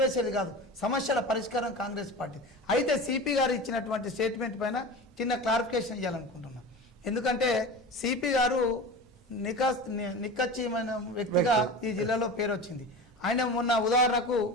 కాదు, సమస్యల పరిష్కారం కాంగ్రెస్ పార్టీ. అయితే సిపి గారు ఇచ్చినటువంటి స్టేట్మెంట్ పైన చిన్న క్లారిఫికేషన్ ఇవ్వాలనుకుంటున్నాం. ఎందుకంటే సిపి గారు నిక్కచ్చిమైన వ్యక్తిగా ఈ జిల్లాలో పేరు వచ్చింది. ఆయన మొన్న ఉదాహరణకు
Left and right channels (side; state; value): both; normal; correlation 0.31